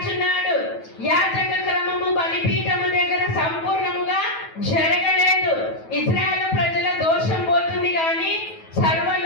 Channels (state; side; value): late; right; 9.2 ms